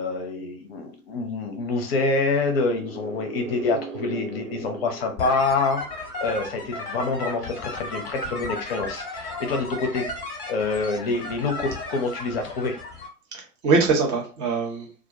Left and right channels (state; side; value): normal; both; correlation 0.24